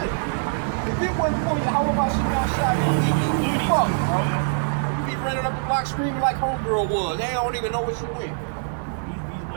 it. If it wasn't for how about shit outside, you'd be fucked, bro. You'd be running up the block screaming like homegirl was. They don't even know where she went. These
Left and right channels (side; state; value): left; silent; 63 dB below the other